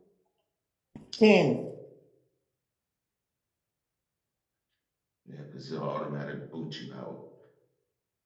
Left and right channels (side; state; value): both; identical; correlation 1.00